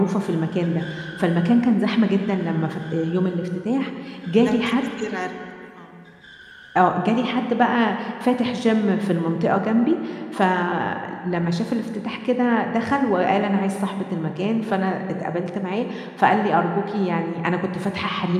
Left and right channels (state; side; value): identical; both; correlation 1.00